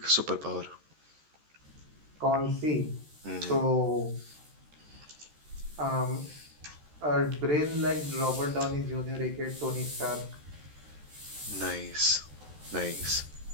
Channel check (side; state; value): left; late; 13 ms